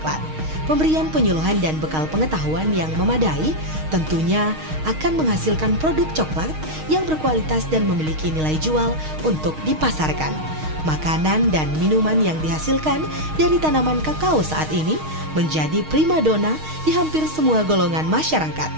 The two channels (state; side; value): late; left; 6.4 ms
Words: Pemberian penyuluhan dan bekal pengetahuan yang memadai tentunya akan menghasilkan produk coklat yang berkualitas dan memiliki nilai jual untuk dipasarkan. Makanan dan minuman yang dihasilkan dari tanaman kakao saat ini menjadi primadona di hampir semua golongan masyarakat.